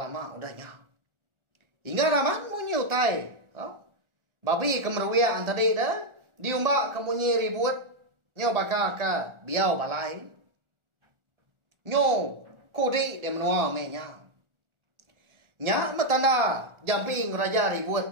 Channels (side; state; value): left; late; 1.4 ms